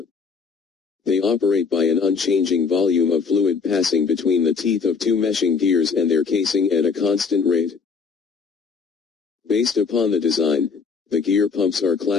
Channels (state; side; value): quieter; right; 5.2 dB